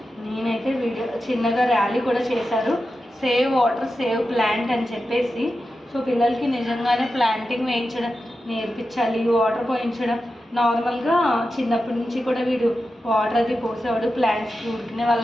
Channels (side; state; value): both; normal; correlation 0.91